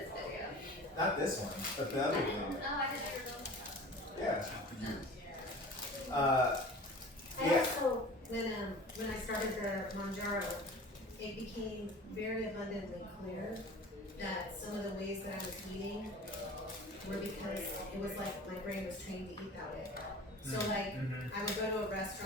video. Not this one, but the other I didn't. video. Oh, I didn't ever know. Yeah. I Yeah. also, when I started the Mounjaro, it became very abundantly clear that some of the ways that I was eating were because it was like my brain was trained to eat that way. So like, I would go to a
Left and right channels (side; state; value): both; normal; correlation 0.41